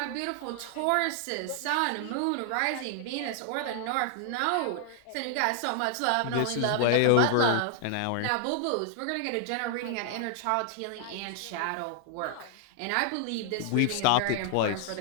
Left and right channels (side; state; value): both; different; correlation -0.01